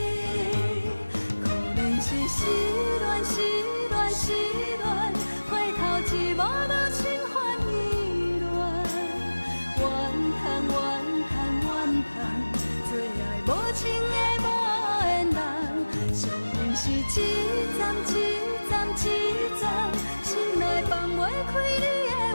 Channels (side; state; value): both; inverted; correlation -1.00